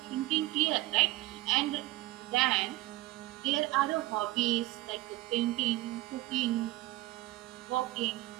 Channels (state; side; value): quieter; left; 18.5 dB